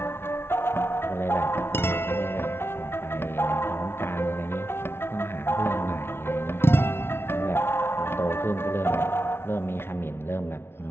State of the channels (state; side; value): late; right; 0.12 ms